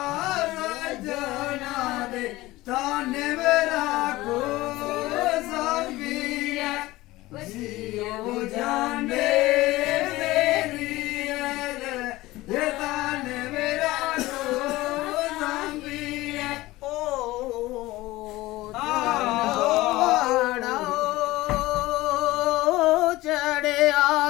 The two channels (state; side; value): quieter; right; 18.6 dB